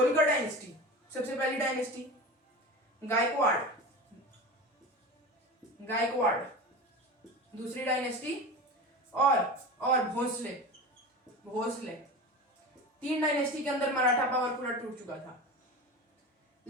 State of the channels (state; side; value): normal; both; correlation 0.30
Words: डायनेस्टी सबसे पहली डायनेस्टी, गायकवाड़ दूसरी डायनेस्टी, और भोसले 3 डायनेस्टी के अंदर मराठा पावर पूरा टूट चुका था।